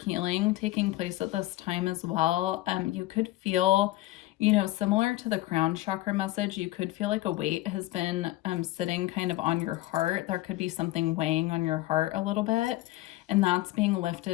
healing taking place at this time as well. You could feel, you know, similar to the crown chakra message, you could feel like a weight has been sitting kind of on your heart. There could be something weighing on your heart a little bit, and that's being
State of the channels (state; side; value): quieter; right; 17.5 dB